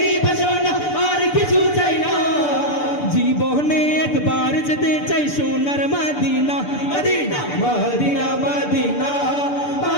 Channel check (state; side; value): late; right; 6.8 ms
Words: ভাষণা আর কিছু চাই না। জীবনে একবার যেতে চাই সোনার Medina, Medina Medina Medina